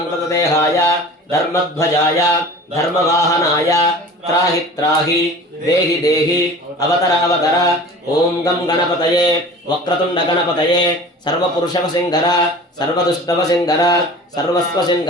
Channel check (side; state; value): both; normal; correlation 0.40